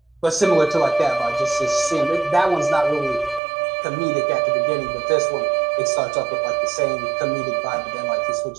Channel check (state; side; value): drops out; left; at 3.4 s